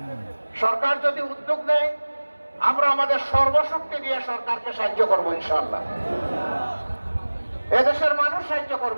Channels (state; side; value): inverted; both; correlation -1.00